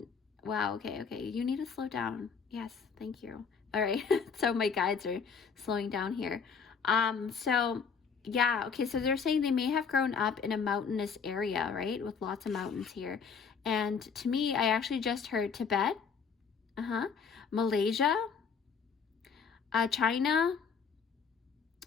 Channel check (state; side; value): quieter; right; 5.9 dB